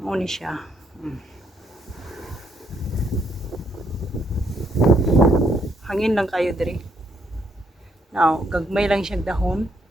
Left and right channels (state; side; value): normal; both; correlation 0.72